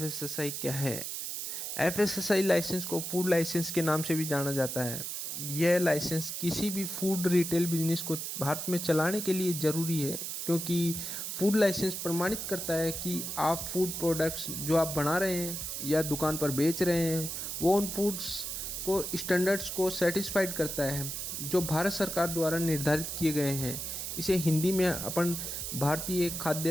क्या है। एफएसएसआई लाइसेंस को फूड लाइसेंस के नाम से भी जाना जाता है। यह लाइसेंस किसी भी फूड रिटेल बिजनेस को भारत में चलाने के लिए ज़रूरी है, क्योंकि फूड लाइसेंस प्रमाणित करता है कि आप फूड प्रोडक्ट्स जो आप बना रहे हैं या दुकान पर बेच रहे हैं वो उन फूड्स को स्टैंडर्ड्स को सेटिस्फाइड करता है जो भारत सरकार द्वारा निर्धारित किए गए हैं। इसे हिंदी में अपन भारतीय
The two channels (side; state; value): right; noise; hiss, 5 dB below the sound